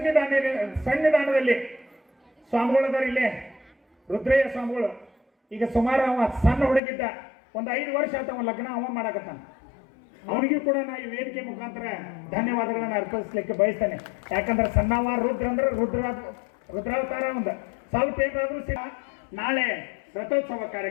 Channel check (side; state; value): right; drops out; at 6.8 s